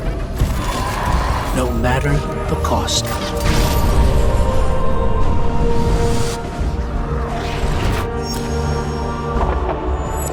no matter the cost.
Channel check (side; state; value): both; identical; correlation 1.00